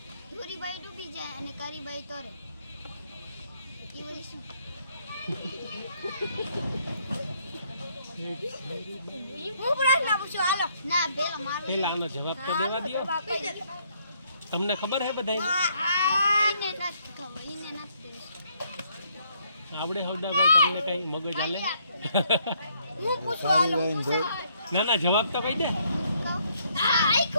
ધોરીબાઈ ડૂબી જાય અને કારીબાઈ તરે. એ બોલી શું? હું પ્રશ્ન પૂછું હાલો. ના પેલો મારો. પેલા આનો જવાબ તો દેવા દો. તમને ખબર હે બધાય? એને નથી ખબર. એને નથી. આવડે હવદાભાઈ તમને કઈ મગજ હાલે? હું પૂછું હાલો. ના ના જવાબ તો કહી દે.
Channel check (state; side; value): inverted; both; correlation -0.69